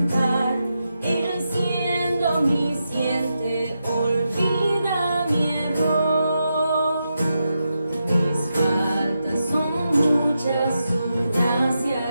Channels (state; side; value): inverted; both; correlation -0.86